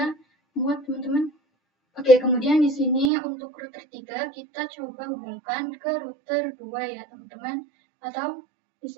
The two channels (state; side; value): drops out; left; at 3.1 s